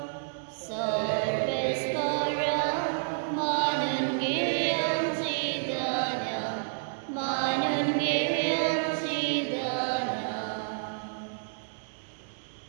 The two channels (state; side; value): silent; left; 58 dB below the other